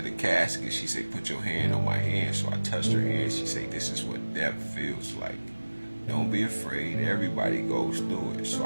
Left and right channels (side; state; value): both; inverted; correlation -1.00